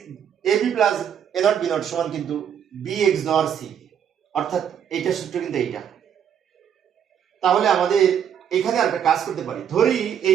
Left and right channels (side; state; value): left; quieter; 8.6 dB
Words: A B plus A not B not সমান কিন্তু বি এক্সর সি, অর্থাৎ এইটা সূত্র কিন্তু এইটা। তাহলে আমাদের এখানে একটা কাজ করতে পারি, ধরি